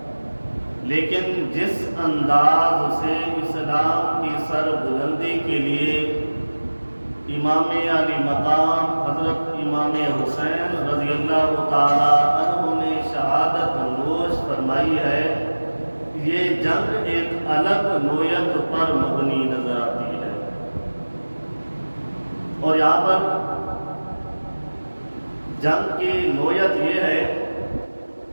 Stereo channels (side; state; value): both; inverted; correlation -1.00